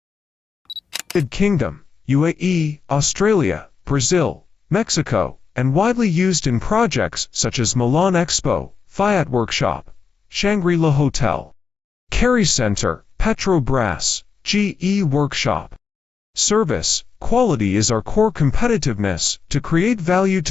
United Kingdom, UAE, Australia, Brazil, Mexico, and widely used in projects such as Milan Expo, Fiat Workshop, Shangri-La Hotel, Kerry Center, Petrobras, GE Workshop. Service, quality is our core competitiveness. To create value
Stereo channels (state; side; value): quieter; right; 5.7 dB